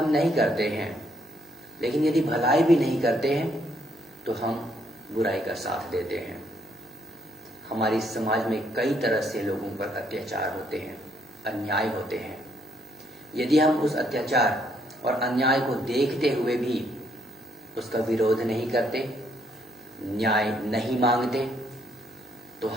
नहीं करते हैं, लेकिन यदि भलाई भी नहीं करते हैं तो हम बुराई का साथ देते हैं। हमारी समाज में कई तरह से लोगों पर अत्याचार होते हैं, अन्याय होते हैं। यदि हम उस अत्याचार और अन्याय को देखते हुए भी उसका विरोध नहीं करते, न्याय नहीं मांगते, तो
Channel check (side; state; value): both; normal; correlation 0.71